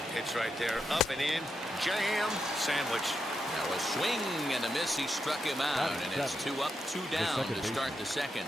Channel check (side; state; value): both; normal; correlation 0.85